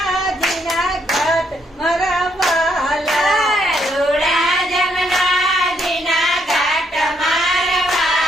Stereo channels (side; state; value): both; normal; correlation 0.74